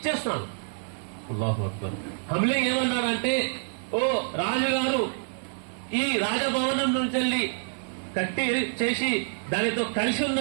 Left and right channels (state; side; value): silent; left; 57 dB below the other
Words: అల్లాహు అక్బర్. హమ్లింగ్ ఏమన్నాడంటే, ఓ రాజుగారు, ఈ రాజభవనం నుంచి వెళ్ళి కట్టి చేసి దానితో కలిసి